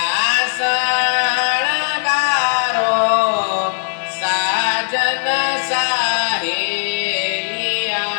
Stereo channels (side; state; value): right; silent; digital silence